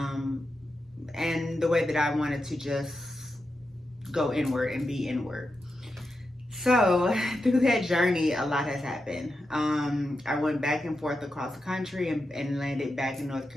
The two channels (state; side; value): normal; both; correlation 0.88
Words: the way that I wanted to just go inward and be inward. So through that journey, a lot has happened. I went back and forth across the country and landed back in North